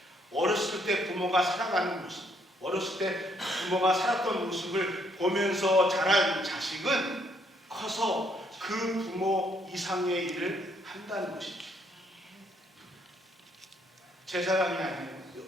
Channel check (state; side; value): normal; both; correlation 0.70